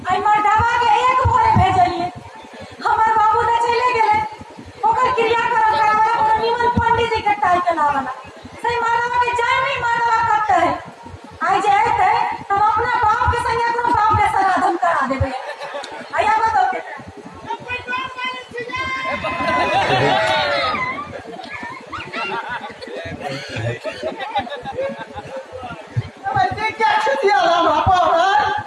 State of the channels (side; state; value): both; identical; correlation 1.00